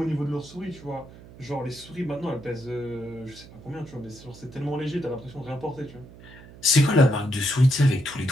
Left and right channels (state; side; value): noise; right; hum, 19 dB below the sound